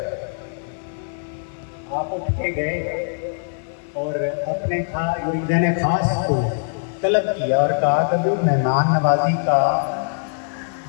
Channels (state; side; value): silent; right; digital silence